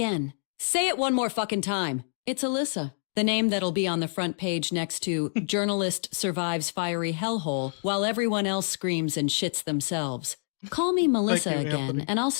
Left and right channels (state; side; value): silent; right; digital silence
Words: Say it one more fucking time. It's Alyssa. The name that'll be on the front page next to Journalist Survives Fiery Hellhole while everyone else screams and shits themselves. Call me Melissa Thank you, again, Anthony. and I'll